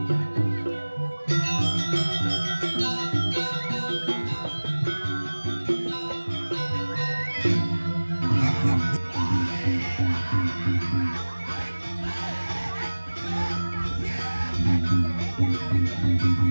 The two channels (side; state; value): both; inverted; correlation -1.00